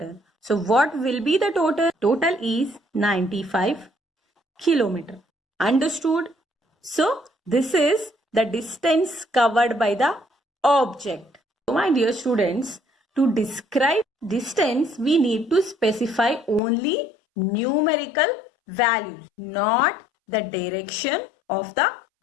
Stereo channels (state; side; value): drops out; right; at 16.6 s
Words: So what will be the total? Total is 95 kilometer. Understood? So this is the distance covered by the object. So my dear students, to describe distance, we need to specify only numerical values, not the direction of the